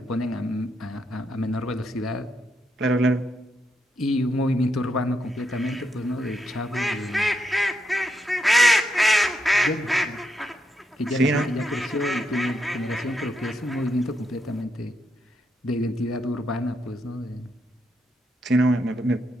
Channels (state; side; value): normal; both; correlation 0.80